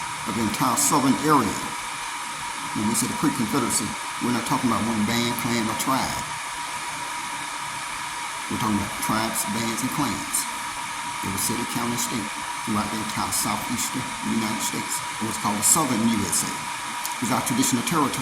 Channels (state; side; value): identical; both; correlation 1.00